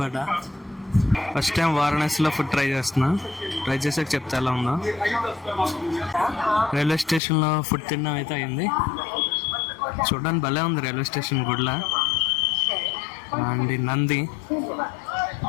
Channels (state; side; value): drops out; right; at 7.2 s